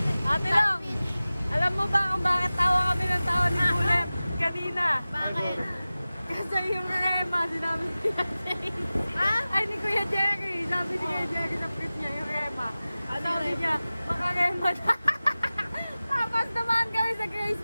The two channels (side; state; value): both; inverted; correlation -0.97